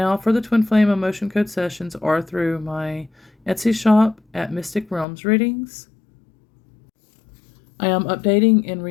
for the Twin Flame emotion code sessions are through my Etsy shop at Mystic Realms Readings. I am updating and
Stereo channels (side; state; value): right; drops out; at 5.1 s